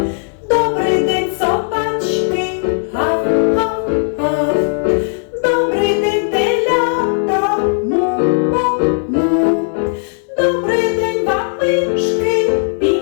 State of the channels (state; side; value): silent; right; 69 dB below the other